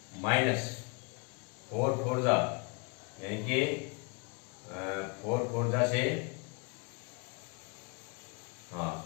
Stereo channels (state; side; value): quieter; right; 33.2 dB